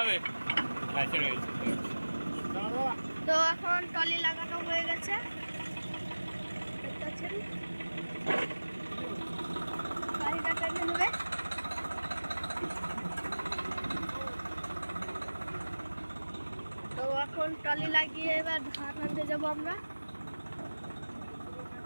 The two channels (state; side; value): inverted; both; correlation -1.00